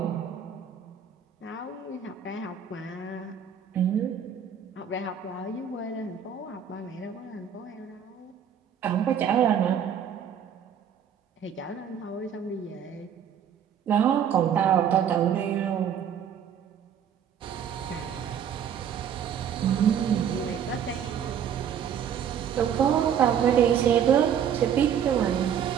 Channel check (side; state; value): left; quieter; 8.4 dB